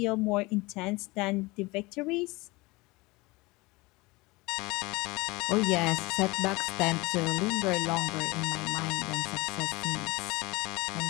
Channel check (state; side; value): quieter; right; 23.2 dB